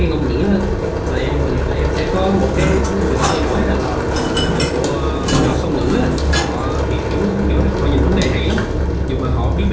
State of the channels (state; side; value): identical; both; correlation 1.00